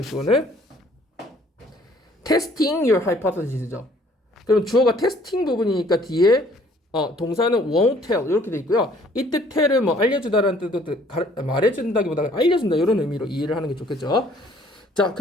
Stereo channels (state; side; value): normal; both; correlation 0.59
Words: 주어는 testing your hypothesis죠. 그럼 주어가 테스팅 부분이니까 뒤에 동사는 won't tell 이렇게 돼 있고요. 이때 tell을 뭐 알려주다라는 뜻도 말해준다기보다 알려준다 이런 의미로 이해를 하는 게 좋겠죠. 자,